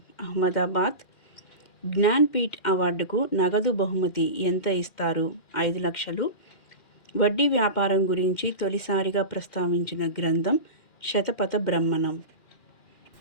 అహ్మదాబాద్. జ్ఞాన్పీఠ్ అవార్డుకు నగదు బహుమతి ఎంత ఇస్తారు? 5 లక్షలు. వడ్డీ వ్యాపారం గురించి తొలిసారిగా ప్రస్తావించిన గ్రంథం శతపథ బ్రహ్మణం.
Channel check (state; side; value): late; right; 2.4 ms